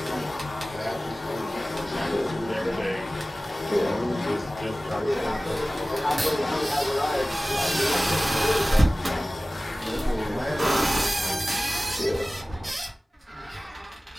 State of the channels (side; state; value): both; normal; correlation 0.97